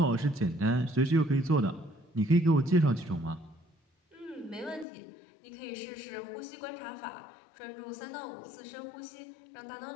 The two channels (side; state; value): right; drops out; at 4.9 s